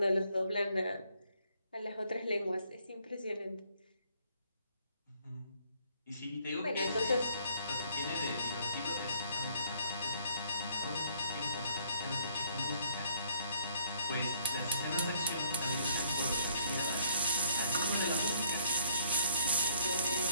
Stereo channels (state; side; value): inverted; both; correlation -0.62